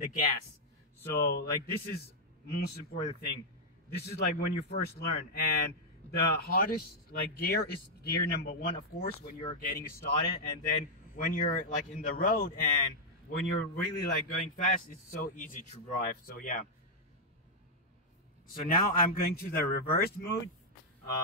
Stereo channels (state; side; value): normal; both; correlation -0.04